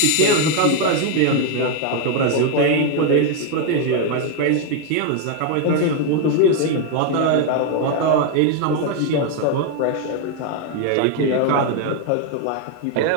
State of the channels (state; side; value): different; both; correlation 0.01